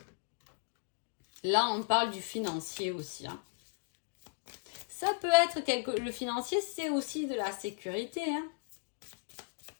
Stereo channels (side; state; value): right; silent; digital silence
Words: Là, on parle du financier aussi. Hein. Ça peut être le financier, c'est aussi de la sécurité. Hein.